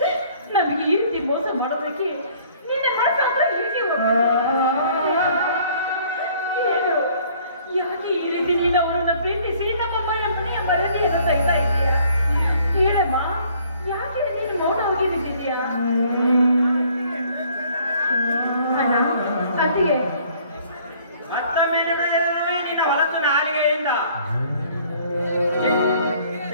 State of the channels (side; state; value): both; inverted; correlation -0.58